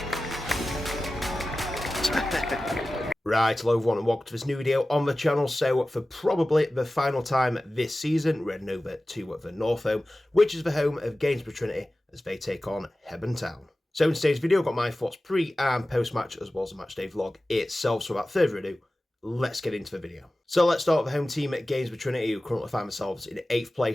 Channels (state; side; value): normal; both; correlation 0.96